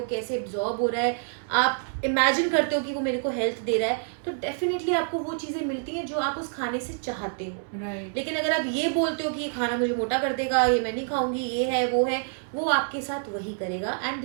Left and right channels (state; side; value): silent; left; 60 dB below the other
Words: कैसे एब्जॉर्ब हो रहा है, आप इमेजिन करते हो कि वो मेरे को हेल्थ दे रहा है, तो डेफिनेटली आपको वो चीजें मिलती हैं जो आप उस खाने से चाहते हो। लेकिन अगर आप ये बोलते हो कि ये खाना मुझे मोटा कर देगा, ये मैं नहीं खाऊंगी, ये है वो आपके साथ वही करेगा। And